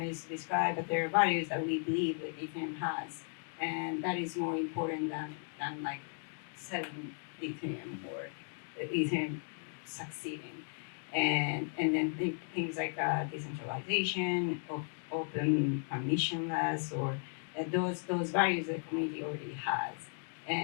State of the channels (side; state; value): right; silent; 54 dB below the other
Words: to describe, but there are values that we believe that Ethereum has, and that is more important than like selling Ethereum or Ethereum succeeding, and then things like decentralization, open permissionless, or those values that the community already has,